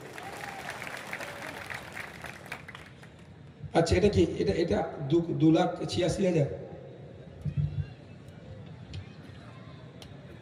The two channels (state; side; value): identical; both; correlation 1.00